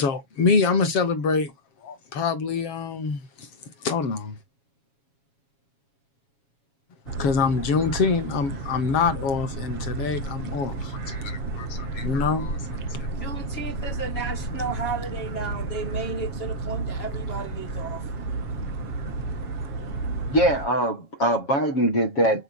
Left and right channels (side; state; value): right; late; 7.3 ms